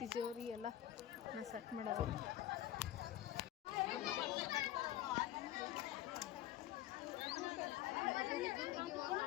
ಎಲ್ಲ ನಾ ಸೆಟ್ ಮಾಡವ.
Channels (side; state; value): right; quieter; 13.3 dB